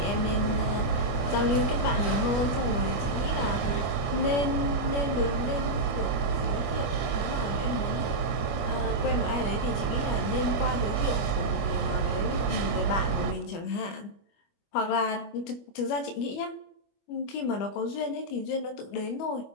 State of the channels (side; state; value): right; late; 25 ms